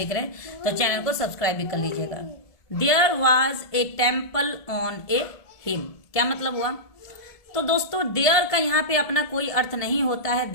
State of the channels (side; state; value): right; late; 1.7 ms